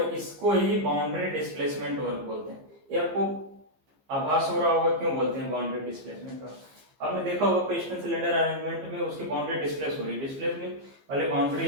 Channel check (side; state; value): left; late; 15 ms